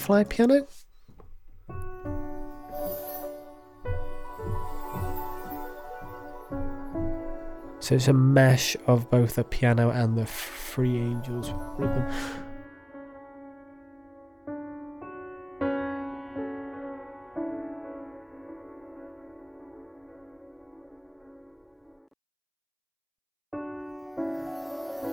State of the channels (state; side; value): identical; both; correlation 1.00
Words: piano. So it's a mesh of both the piano and the Free Angels rhythm.